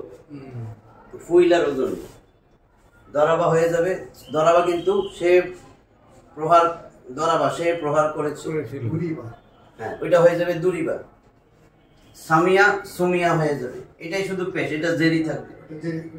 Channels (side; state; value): both; identical; correlation 1.00